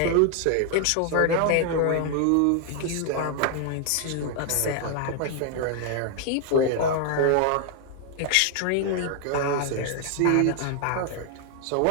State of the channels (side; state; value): both; different; correlation 0.00